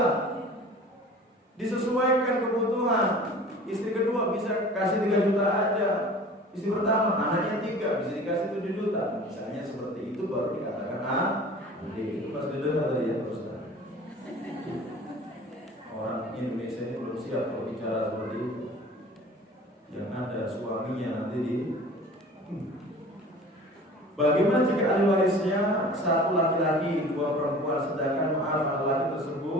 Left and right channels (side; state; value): both; normal; correlation 0.43